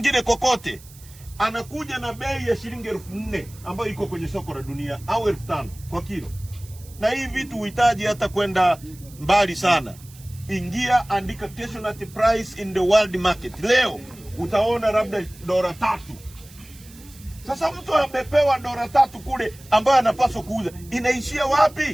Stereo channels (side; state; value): right; noise; hiss, 22 dB below the sound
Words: kokote, anakuja na bei ya shilingi 4000 ambayo iko kwenye soko la dunia, au 5000 kwa kilo. Na hii vitu uhitaji hata kwenda mbali sana. Ingia, andika casualty price in the world market. Leo utaona labda $3. Sasa mtu amepewa $3 kule ambayo anapaswa kuuza, inaishia